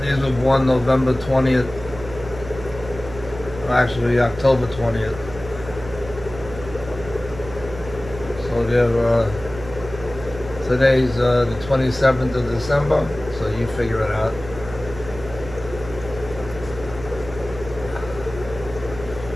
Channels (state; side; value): noise; right; hum, 13 dB below the sound